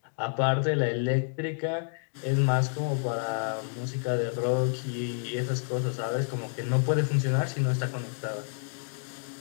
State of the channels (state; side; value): silent; right; digital silence